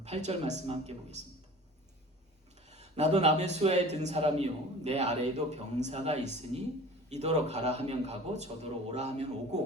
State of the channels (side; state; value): both; normal; correlation 0.42